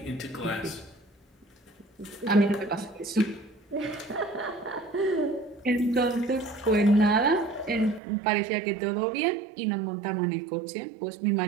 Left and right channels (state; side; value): drops out; left; at 8.0 s